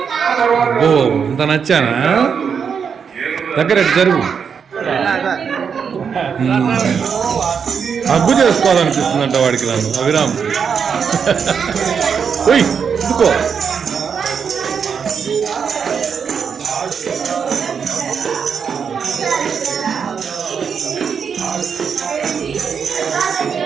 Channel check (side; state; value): left; quieter; 6.7 dB